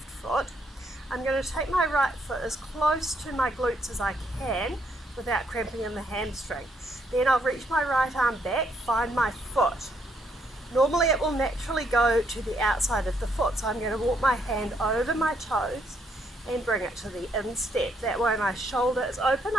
foot. I'm going to take my right foot as close to my glutes as I can without cramping in the hamstring. Then I'll reach my right arm back, find my foot. Normally it will naturally go to the outside of the foot, so I'm going to walk my hand over my toes and bring it to the instep. That way my shoulder is open,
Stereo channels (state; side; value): normal; both; correlation 0.72